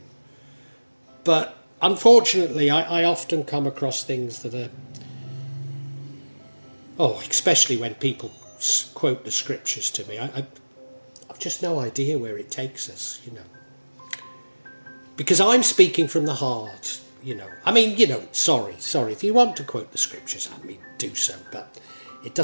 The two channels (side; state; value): both; inverted; correlation -1.00